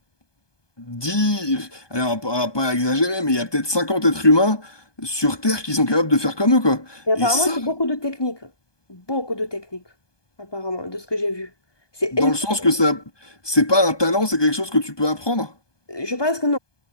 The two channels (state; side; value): late; right; 1.2 ms